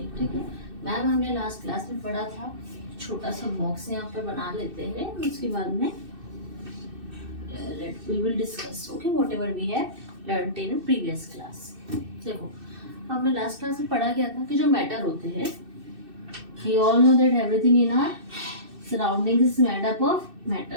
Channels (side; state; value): left; late; 2.6 ms